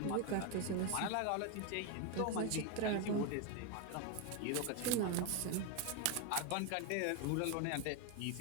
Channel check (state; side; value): different; both; correlation 0.01